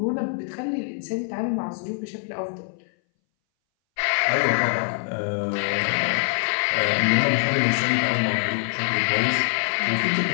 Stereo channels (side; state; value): right; silent; 60 dB below the other